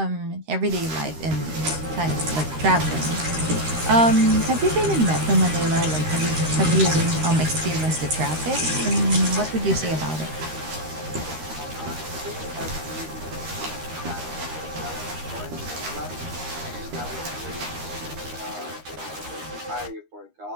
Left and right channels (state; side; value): late; left; 13 ms